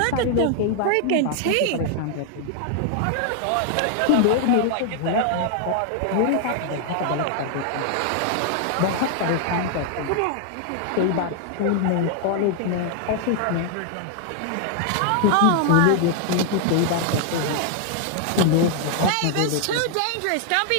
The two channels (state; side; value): different; both; correlation 0.00